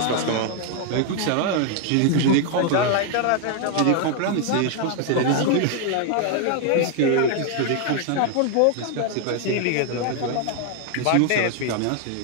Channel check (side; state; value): both; different; correlation 0.00